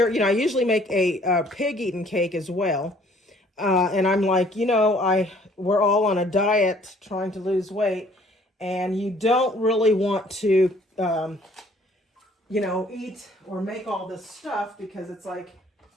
you know, I usually make a pig eating cake as well. And I'm like, you know, we're all on a diet trying to lose weight, and you don't really want to, you know, eat or make all this stuff because it's like,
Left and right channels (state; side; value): normal; both; correlation 0.58